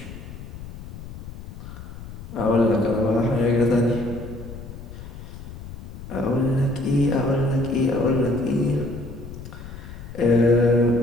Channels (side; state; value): left; noise; rumble, 12 dB below the sound